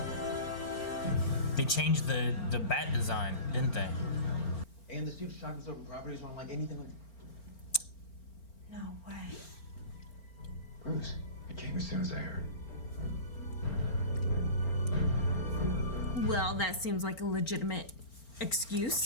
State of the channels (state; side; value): late; right; 4.4 ms